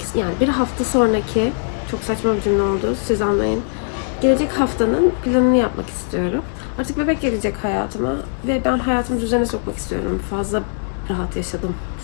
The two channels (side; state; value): right; silent; digital silence